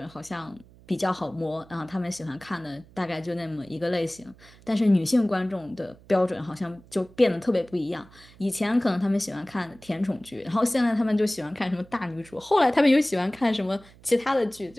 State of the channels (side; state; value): right; noise; hum, 24 dB below the sound